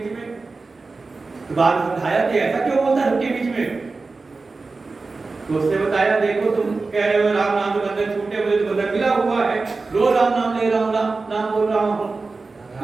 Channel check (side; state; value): left; quieter; 3.9 dB